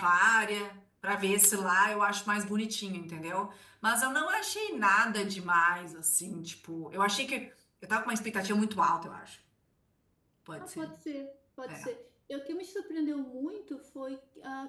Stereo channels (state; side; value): identical; both; correlation 1.00